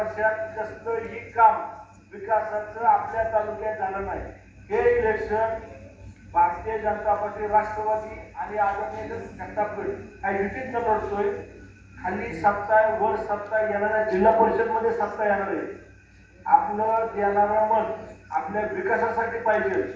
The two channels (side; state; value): both; identical; correlation 1.00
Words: कसलंही काम विकासाचं आपल्या तालुक्यात झालं नाही. हे इलेक्शन भारतीय जनता पार्टी, राष्ट्रवादी आणि आदरणीय घंटापीठ काही युतीत न लढतोय. खाली सत्ता आहे, वर सत्ता येणाऱ्या जिल्हा परिषद मध्ये सत्ता येणार आहे. आपलं देणारं मत आपल्या विकासासाठी पाहिजे,